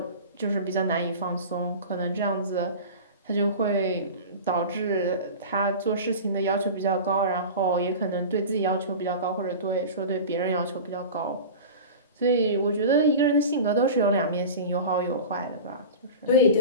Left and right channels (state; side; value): inverted; both; correlation -0.33